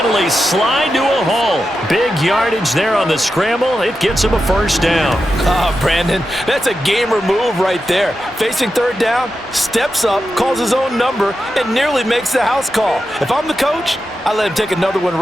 slide to a hole. Big yardage there on the scramble. It gets him a 1st down. Brandon, that's a gamer move right there. Facing 3rd down, steps up, calls his own number, and nearly makes the house call. If I'm the coach, I let him take another one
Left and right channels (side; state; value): both; normal; correlation 0.89